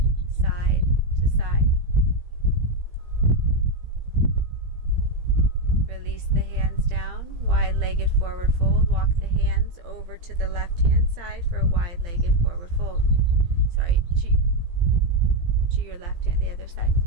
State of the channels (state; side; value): late; left; 17 ms